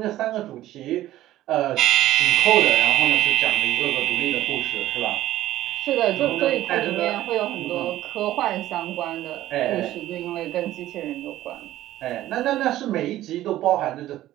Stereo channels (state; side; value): quieter; left; 14.4 dB